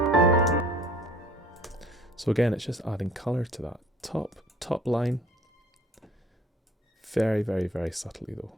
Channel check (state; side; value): normal; both; correlation 0.51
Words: So again, it's just adding colour to that top line. Very, very, very subtly though.